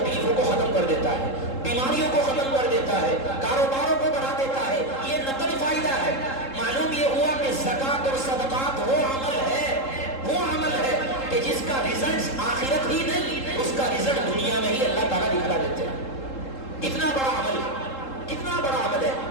کو ختم کر دیتا ہے، بیماریوں کو ختم کر دیتا ہے، کاروباروں کو بڑھا دیتا ہے. یہ نقل فائدہ ہے. معلوم یہ ہوا کہ زکوٰۃ اور صدقات وہ عمل ہے کہ جس کا رزلٹ آخرت ہی نہیں، اس کا رزلٹ دنیا میں ہی اللہ تعالیٰ دکھا دیتے ہیں. کتنا بڑا عمل ہے، کتنا بڑا عمل ہے.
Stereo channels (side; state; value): right; late; 3.7 ms